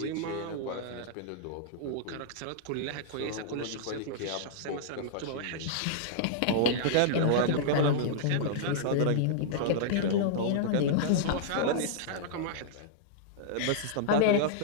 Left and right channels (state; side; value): different; both; correlation -0.02